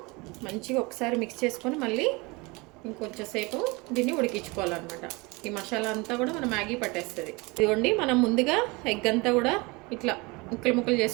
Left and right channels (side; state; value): left; quieter; 25.7 dB